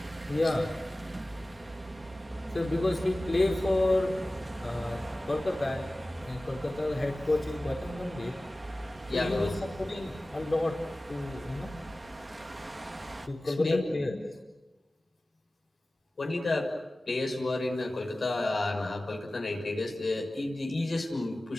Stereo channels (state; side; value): normal; both; correlation 0.97